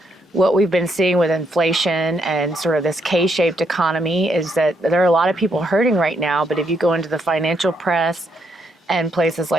what we've been seeing with inflation and sort of this K-shaped economy is that there are a lot of people hurting right now, but if you go into the financial press and places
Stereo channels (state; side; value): normal; both; correlation 0.76